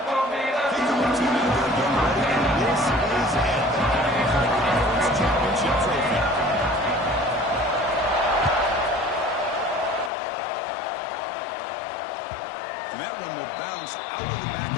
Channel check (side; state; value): right; drops out; at 10.1 s